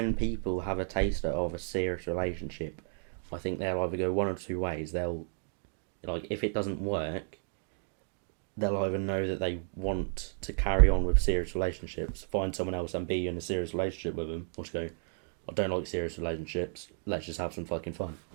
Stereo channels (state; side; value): silent; left; digital silence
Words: people have a taster of a serious relationship, I think they'll either go one or two ways. They'll, like, if it doesn't work, they'll either know that they want to carry on with serious relationships, find someone else and be in a serious relationship with them, or just go, I don't like serious relationships, let's just have some fucking fun.